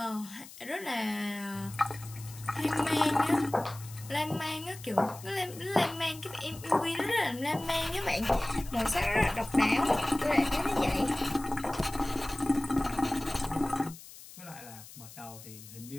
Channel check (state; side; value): noise; left; hiss, 17 dB below the sound